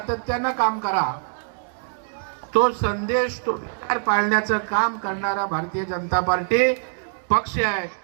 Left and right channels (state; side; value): silent; left; 63 dB below the other